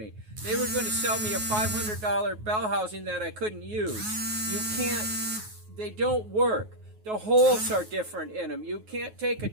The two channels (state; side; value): late; left; 9.4 ms